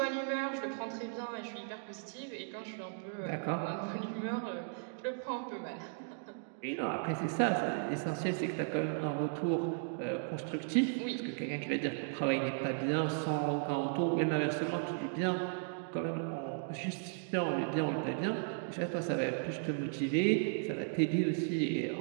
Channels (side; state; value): left; silent; digital silence